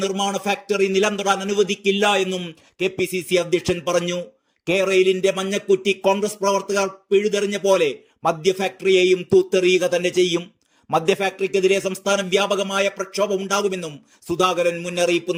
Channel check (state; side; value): identical; both; correlation 1.00